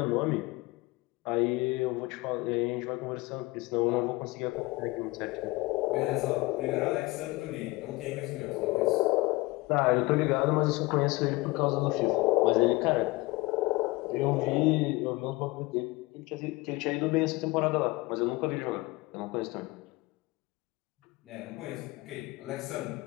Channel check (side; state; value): right; quieter; 22.3 dB